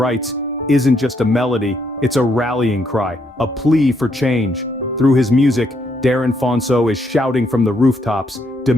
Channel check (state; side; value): normal; both; correlation 0.75